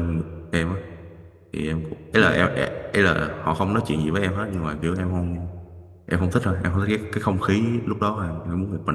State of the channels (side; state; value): both; identical; correlation 1.00